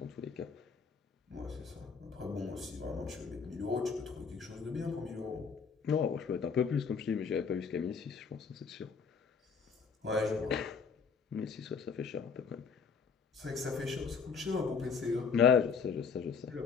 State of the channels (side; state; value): right; quieter; 5.8 dB